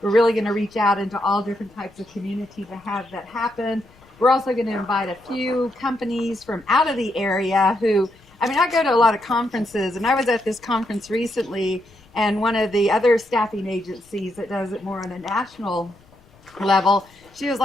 really going to reach out into all different types of community to have that happen. We're also going to invite a few companies from out of the area I go to a lot of conferences, and I was at this conference recently, and one of the other staffing agencies that does it more on a national level, she was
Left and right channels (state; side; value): noise; left; rumble, 29 dB below the sound